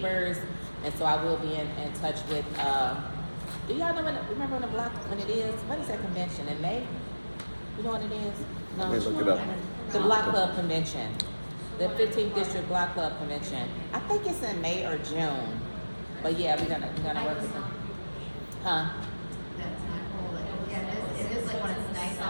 And so I will be in touch with, do y'all know remember when it is? When is that convention, in May? You know when it is? No. Let me look it up. The Block Club Convention, the 15th District Block Club Convention. I think it's in May or June. But yeah, we're gonna work with them. Huh? That's not cool. Yeah, it is like when it's nice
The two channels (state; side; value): inverted; both; correlation -1.00